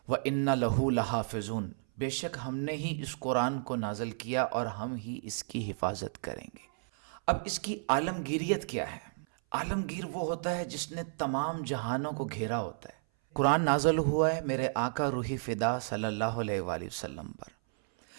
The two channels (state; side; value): silent; left; 56 dB below the other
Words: وانا لہ لحافظون، بے شک ہم نے ہی اس قرآن کو نازل کیا اور ہم ہی اس کی حفاظت کریں گے۔ اب اس کی عالمگیریت کیا ہے؟ عالمگیر وہ ہوتا ہے جس نے تمام جہانوں کو گھیرا ہوتا ہے۔ قرآن نازل ہوا ہے میرے آقا روحی فدا صلی اللہ علیہ وآلہ وسلم پر،